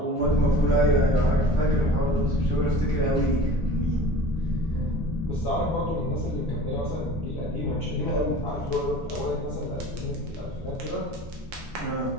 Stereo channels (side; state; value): both; normal; correlation 0.42